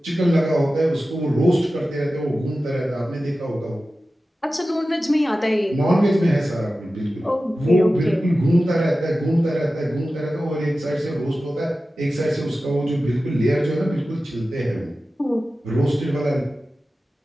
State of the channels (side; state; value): both; normal; correlation 0.94